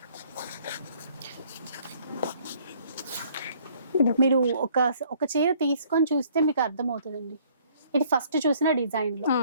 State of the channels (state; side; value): inverted; both; correlation -0.60